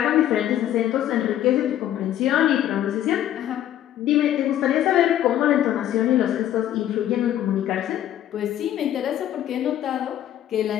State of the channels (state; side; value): quieter; right; 11.9 dB